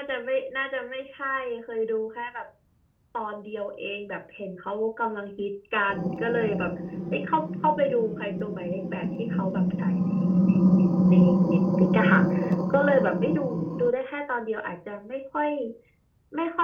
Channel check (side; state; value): both; identical; correlation 1.00